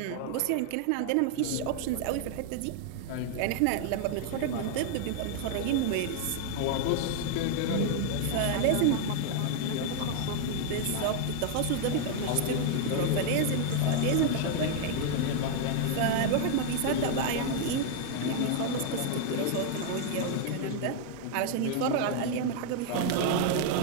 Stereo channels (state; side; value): different; both; correlation 0.00